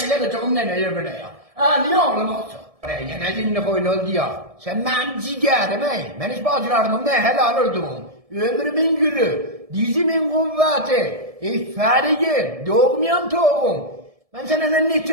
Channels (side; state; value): left; late; 1.7 ms